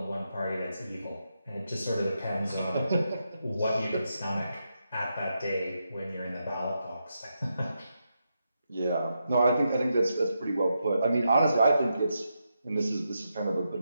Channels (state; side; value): inverted; both; correlation -0.84